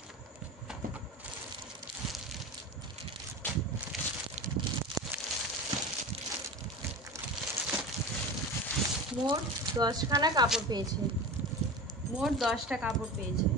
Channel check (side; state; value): both; normal; correlation 0.30